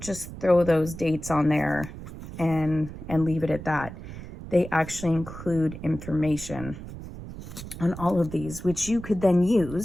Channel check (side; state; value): right; noise; rumble, 12 dB below the sound